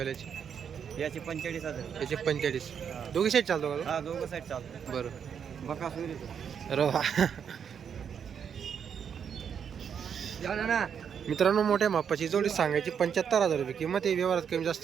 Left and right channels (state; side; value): quieter; left; 7.6 dB